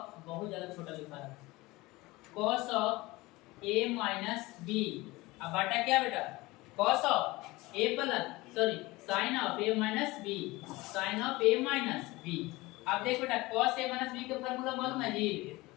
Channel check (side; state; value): right; quieter; 21.0 dB